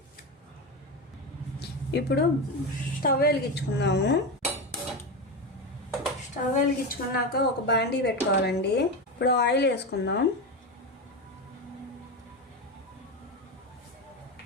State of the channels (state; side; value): normal; both; correlation 0.17